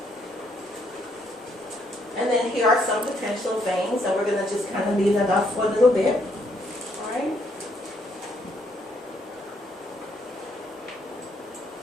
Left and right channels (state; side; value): normal; both; correlation 0.71